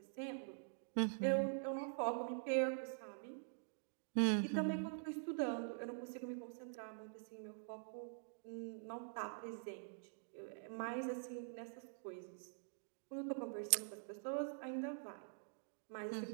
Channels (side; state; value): left; silent; digital silence